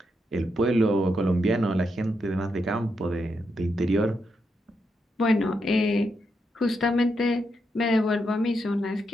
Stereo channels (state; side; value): normal; both; correlation 0.82